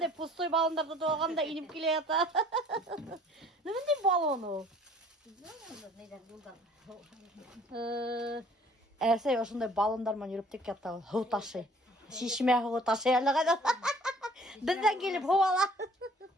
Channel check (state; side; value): normal; both; correlation 0.54